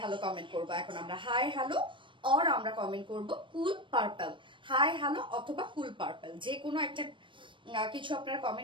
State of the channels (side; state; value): left; late; 0.24 ms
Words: হ্যালো কমেন্ট করবো এখন আমরা, হাই হ্যালো অর আমরা কমেন্ট করব কুল পার্পল, হাই হ্যালো অথবা কুল পার্পল, যে কোনো একটা কিছু আপনারা